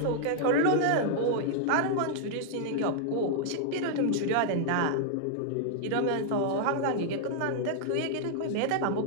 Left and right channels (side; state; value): both; different; correlation -0.01